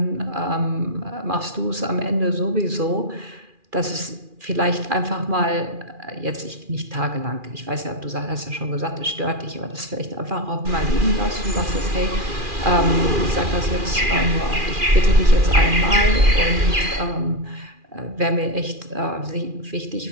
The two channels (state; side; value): late; left; 2.4 ms